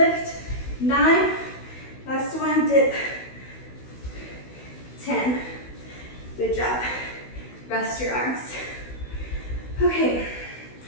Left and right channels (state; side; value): late; right; 16 ms